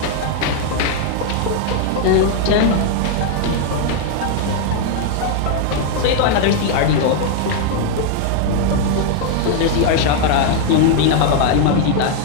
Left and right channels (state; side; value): different; both; correlation 0.00